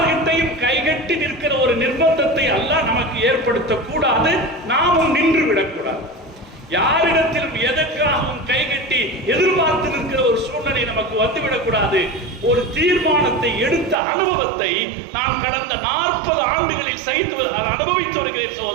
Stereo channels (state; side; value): drops out; left; at 14.0 s